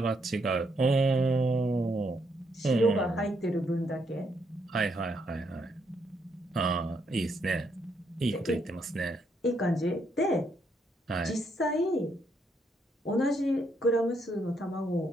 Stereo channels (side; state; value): both; normal; correlation 0.75